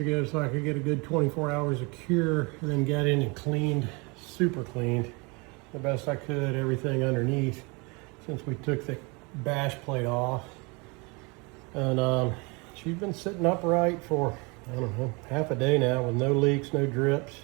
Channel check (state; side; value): quieter; left; 29.1 dB